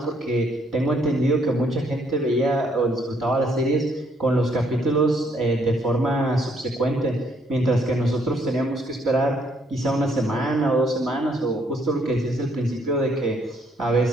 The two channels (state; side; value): normal; both; correlation 0.69